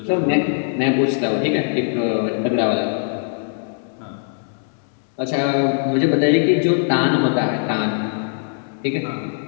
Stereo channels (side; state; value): right; silent; digital silence